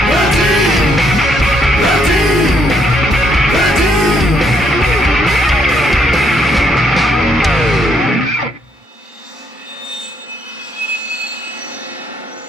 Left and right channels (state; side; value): normal; both; correlation 0.72